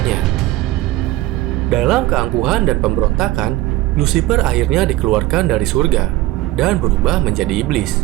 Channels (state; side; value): quieter; left; 17.0 dB